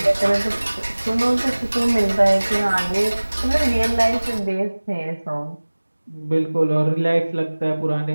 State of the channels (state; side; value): inverted; both; correlation -1.00